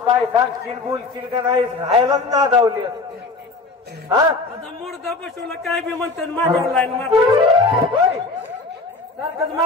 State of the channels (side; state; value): right; quieter; 3.5 dB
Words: सांगशील बोलशील का नाही राहायलाच ना धावली हा आता मुर्दा बसवला काय बी म्हणतात माझ्या लाईन मारते होय सारखंच